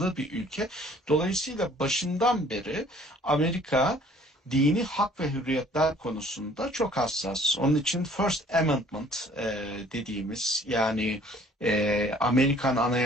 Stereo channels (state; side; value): normal; both; correlation 0.56